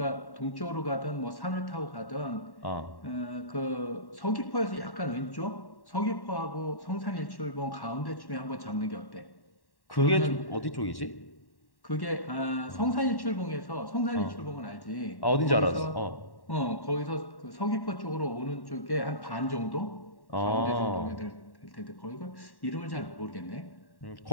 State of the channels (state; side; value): late; right; 1.1 ms